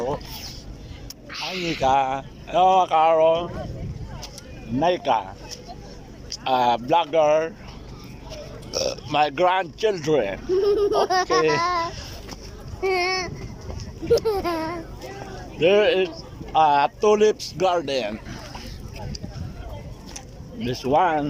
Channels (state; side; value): identical; both; correlation 1.00